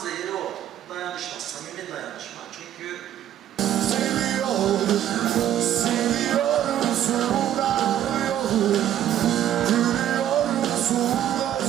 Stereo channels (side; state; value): left; quieter; 11.4 dB